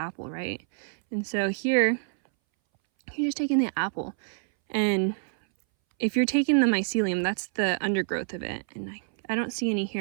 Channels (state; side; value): silent; left; 60 dB below the other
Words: right? And so here, you're just taking the apple. And if you're taking the mycelium, that's the undergrowth of it. And I don't see any